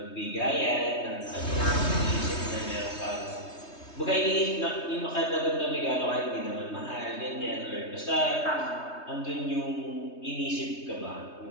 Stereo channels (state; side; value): late; right; 3.2 ms